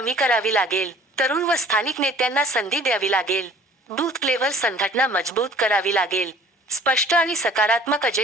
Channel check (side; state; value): both; normal; correlation 0.51